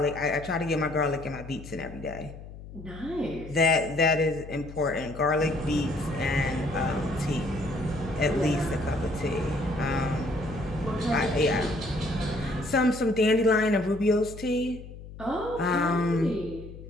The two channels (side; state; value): left; noise; hum, 14 dB below the sound